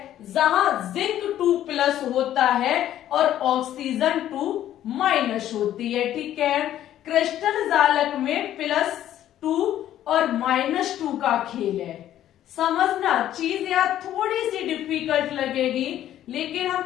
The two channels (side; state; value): right; quieter; 12.0 dB